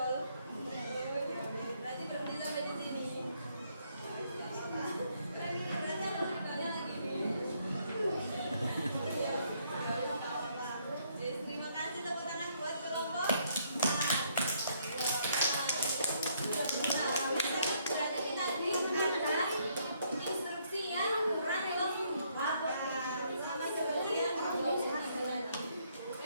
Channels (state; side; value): inverted; both; correlation -0.70